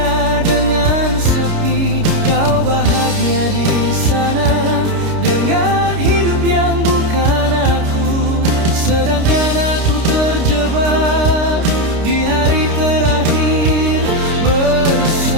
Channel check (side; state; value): left; late; 29 ms